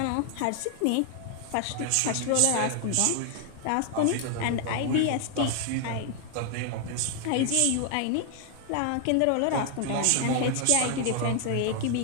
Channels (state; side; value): different; both; correlation 0.00